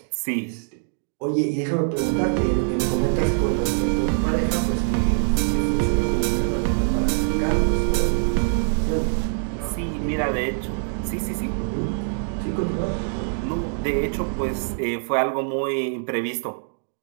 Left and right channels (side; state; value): left; silent; digital silence